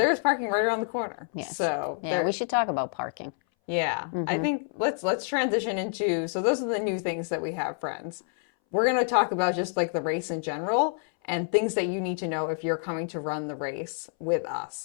is parking right around the corner. So we should talk about parking. I think let's transition into, so those are the new things that we have, friends. We're going to talk about just like the race in general and things that you need to know if you're coming to run the race with us.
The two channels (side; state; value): right; silent; 59 dB below the other